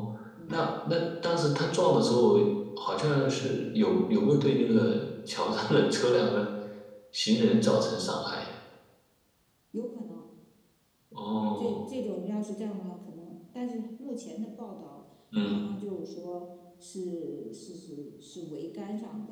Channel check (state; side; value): identical; both; correlation 1.00